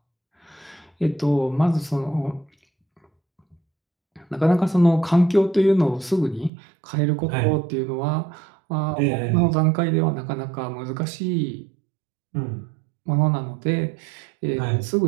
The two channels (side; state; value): left; drops out; at 6.5 s